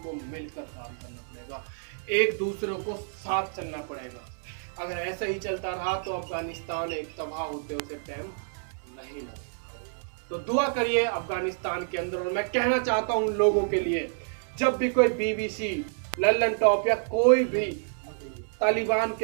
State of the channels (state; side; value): silent; left; digital silence